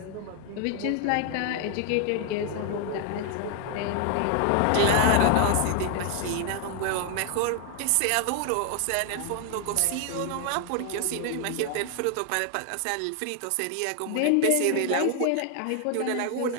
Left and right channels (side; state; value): both; different; correlation 0.00